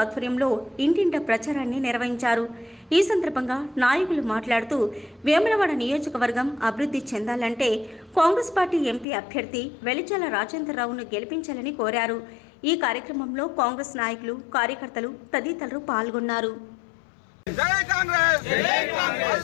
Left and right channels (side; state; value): right; drops out; at 9.1 s